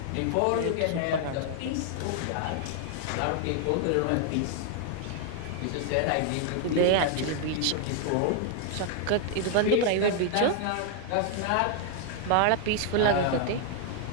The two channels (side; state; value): both; different; correlation 0.00